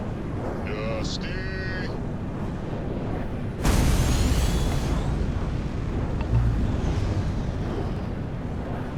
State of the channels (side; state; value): both; identical; correlation 1.00